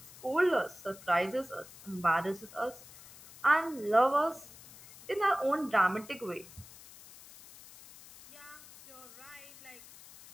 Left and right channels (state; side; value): noise; left; hiss, 19 dB below the sound